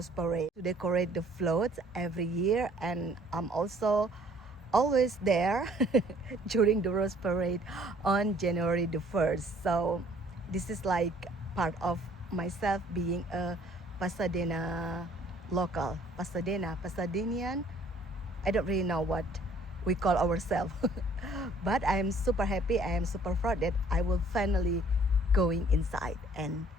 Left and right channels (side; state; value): both; normal; correlation 0.58